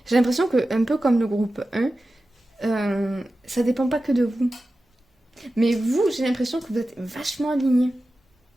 J'ai l'impression que, un peu comme le groupe 1, ça dépend pas que de vous. Mais vous, j'ai l'impression que vous êtes vachement alignés.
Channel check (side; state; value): both; normal; correlation 0.94